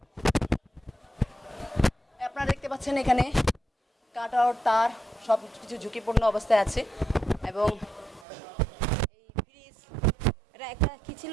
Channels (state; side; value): drops out; left; at 8.2 s